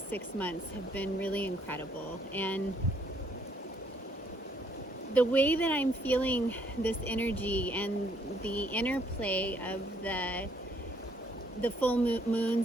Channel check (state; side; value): normal; both; correlation 0.67